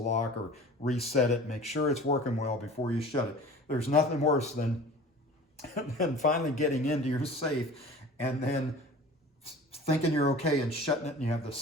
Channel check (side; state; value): both; normal; correlation 0.41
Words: or reset it. Make sure it's working well before you shut it. There's nothing worse than finally getting into your safe and then thinking you're okay and shutting it, and you have the